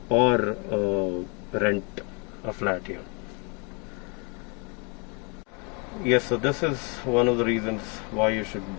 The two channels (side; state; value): right; quieter; 33.3 dB